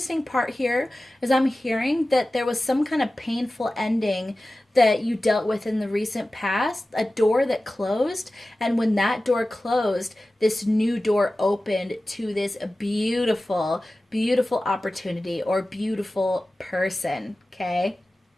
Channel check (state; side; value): normal; both; correlation 0.96